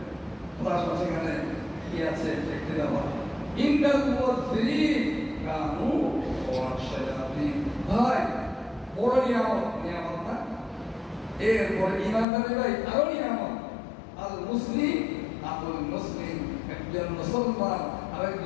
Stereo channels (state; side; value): drops out; right; at 12.2 s